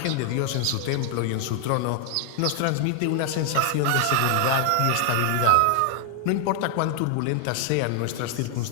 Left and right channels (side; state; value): both; different; correlation 0.00